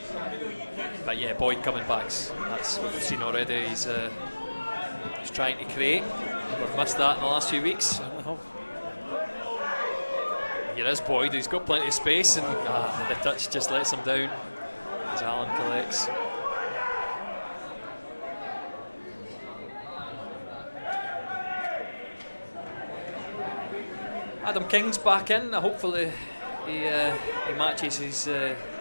But yeah, Boyd coming back. That's what we've seen already. He's trying to create. We've missed that in the last few weeks. Here is Boyd, he's got plenty of space, and the touch just lets him down as Allen collects. Adam King's back in. Hopefully he matches his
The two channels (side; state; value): both; inverted; correlation -1.00